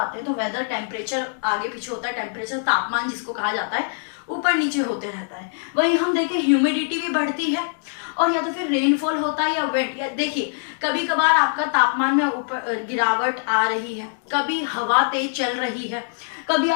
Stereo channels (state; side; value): silent; right; digital silence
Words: हैं। तो वेदर, टेम्परेचर आगे पीछे होता है, टेम्परेचर तापमान जिसको कहा जाता है, ऊपर नीचे होते रहता है। वहीं हम देखें ह्यूमिडिटी भी बढ़ती है, और या तो फिर रेनफॉल होता है या विंड। या देखिए कभी कभार आपका तापमान में ऊपर गिरावट आ रही है, कभी हवा तेज चल रही है, कभी